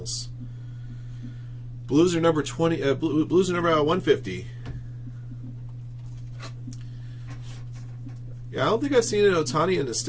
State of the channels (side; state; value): both; identical; correlation 1.00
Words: Blues are number 20. Blues are number 150. Yeah, I don't think I've seen an Ohtani in this